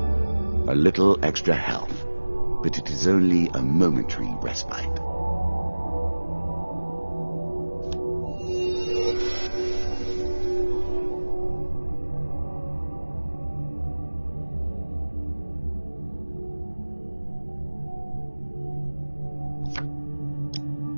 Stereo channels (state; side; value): inverted; both; correlation -1.00